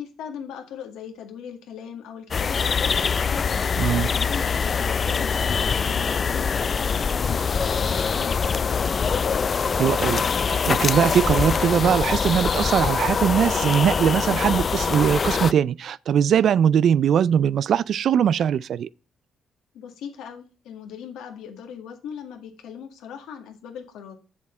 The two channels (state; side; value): normal; both; correlation 0.73